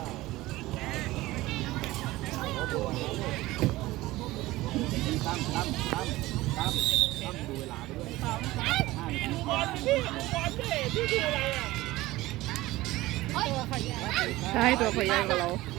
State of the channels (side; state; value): left; quieter; 18.2 dB